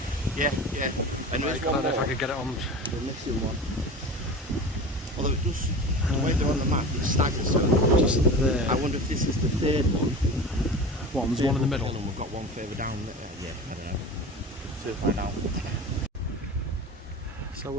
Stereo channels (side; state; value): both; normal; correlation 0.33